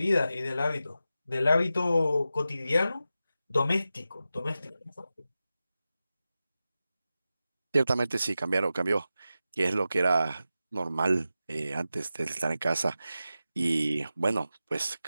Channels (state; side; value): inverted; both; correlation -0.92